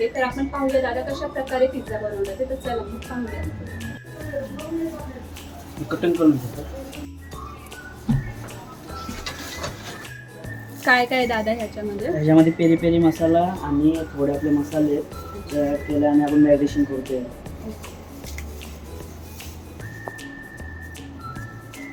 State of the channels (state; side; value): identical; both; correlation 1.00